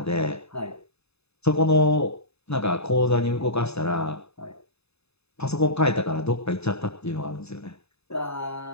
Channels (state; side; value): late; right; 0.79 ms